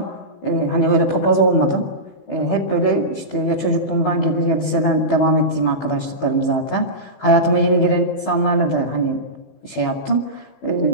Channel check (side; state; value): right; late; 15 ms